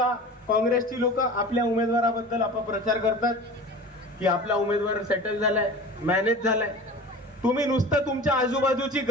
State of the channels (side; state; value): both; normal; correlation 0.37